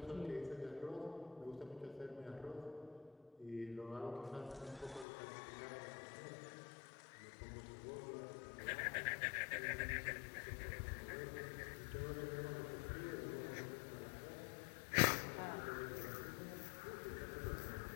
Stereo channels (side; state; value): right; drops out; at 5.1 s